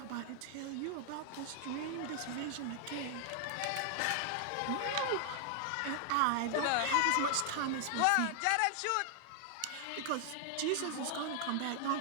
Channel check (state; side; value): different; both; correlation 0.00